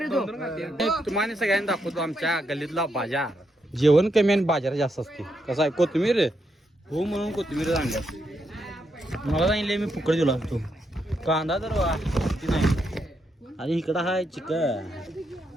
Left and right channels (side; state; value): both; normal; correlation 0.80